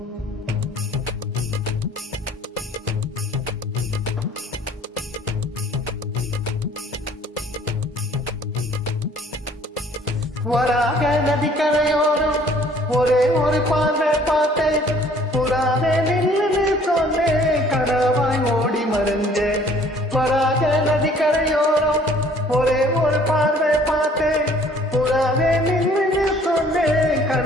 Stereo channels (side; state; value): both; normal; correlation 0.56